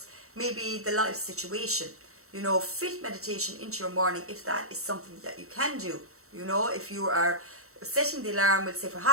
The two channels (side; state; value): left; late; 0.63 ms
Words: maybe the life situation, you know. Fit meditation into your morning if that is something that you can do, you know. If you are setting the alarm, we'll say for